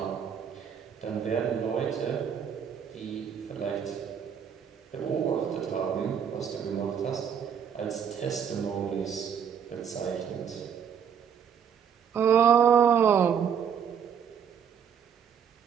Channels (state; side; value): quieter; left; 7.9 dB